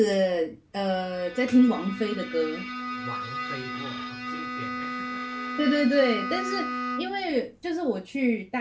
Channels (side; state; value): both; identical; correlation 1.00